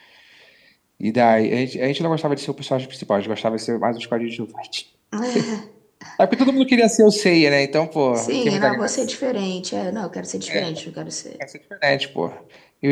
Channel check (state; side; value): identical; both; correlation 1.00